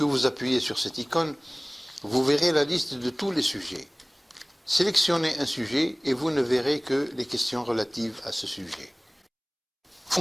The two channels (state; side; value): identical; both; correlation 1.00